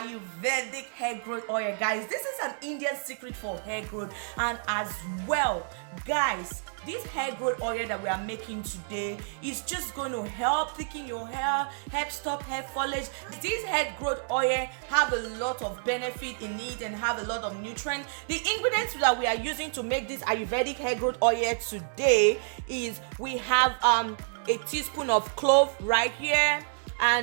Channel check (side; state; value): left; silent; 58 dB below the other